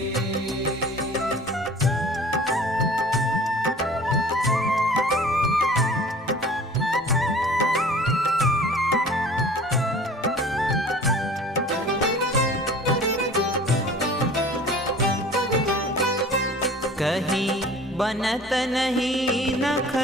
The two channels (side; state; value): both; normal; correlation 0.46